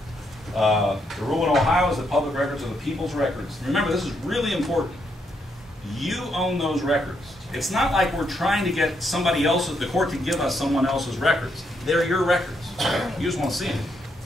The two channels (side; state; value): both; normal; correlation 0.77